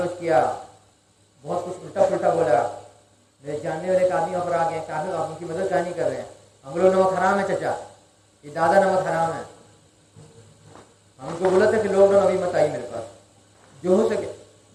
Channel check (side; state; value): both; identical; correlation 1.00